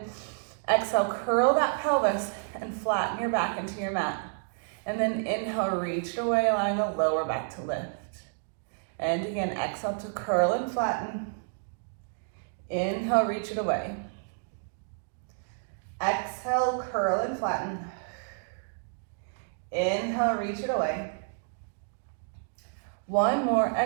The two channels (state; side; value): silent; left; digital silence